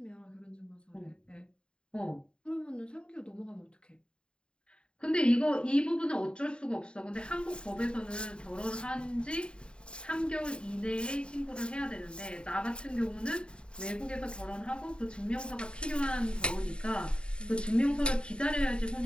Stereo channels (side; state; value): right; late; 0.051 ms